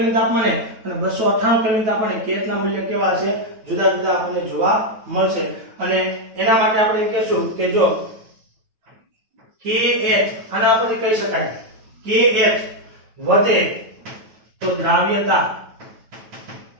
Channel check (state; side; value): late; left; 9.2 ms